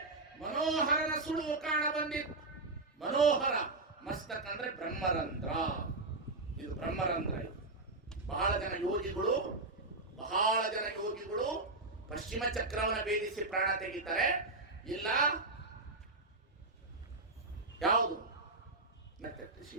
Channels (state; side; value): quieter; left; 3.2 dB